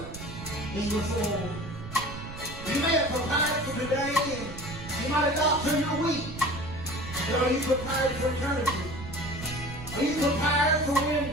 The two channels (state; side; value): noise; right; rumble, 11 dB below the sound